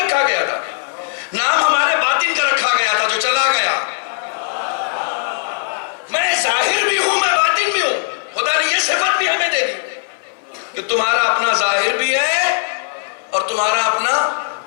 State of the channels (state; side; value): silent; right; 59 dB below the other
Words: گیا تھا، نام ہمارے باطن کا رکھا گیا تھا جو چلا گیا۔ میں ظاہر بھی ہوں، میں باطن بھی ہوں۔ خدا نے یہ صفت بھی ہمیں دے دی کہ تمہارا اپنا ظاہر بھی ہے اور تمہارا اپنا